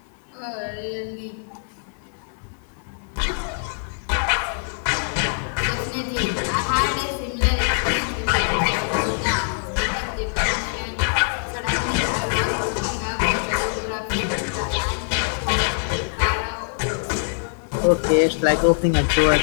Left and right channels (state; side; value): silent; right; digital silence